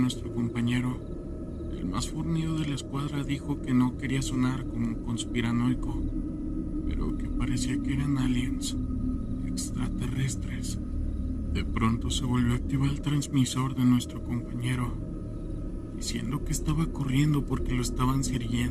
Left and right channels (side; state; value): both; identical; correlation 1.00